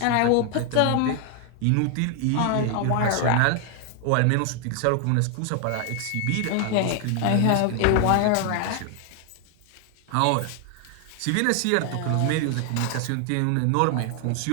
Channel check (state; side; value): different; both; correlation 0.00